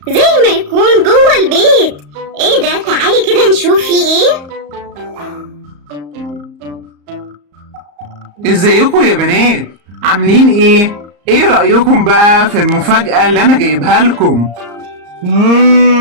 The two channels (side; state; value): left; late; 34 ms